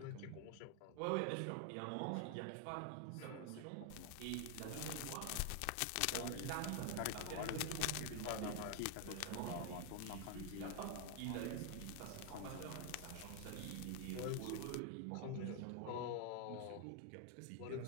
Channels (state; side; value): different; both; correlation 0.00